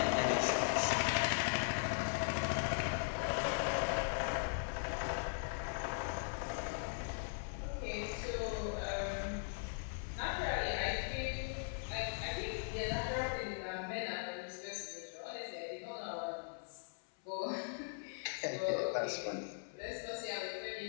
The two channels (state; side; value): silent; right; 51 dB below the other